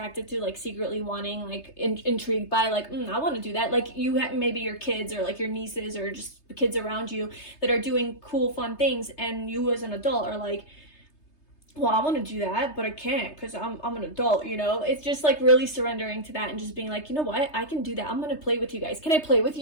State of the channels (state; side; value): late; right; 3.3 ms